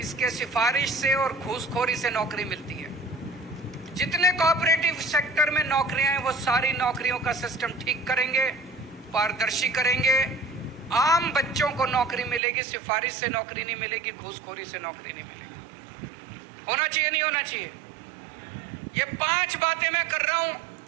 सिफारिश से और घूसखोरी से नौकरी मिलती है। जितने कोऑपरेटिव सेक्टर में नौकरियां हैं वो सारी नौकरियों का सिस्टम ठीक करेंगे, पारदर्शी करेंगे। आम बच्चों को नौकरी मिलेगी, सिफारिश से नौकरी नहीं मिलेगी, घूसखोरी से नौकरी नहीं मिलेगी। होना चाहिए नहीं होना चाहिए? ये 5 बातें मैं कर रहा हूं।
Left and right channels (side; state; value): left; drops out; at 12.4 s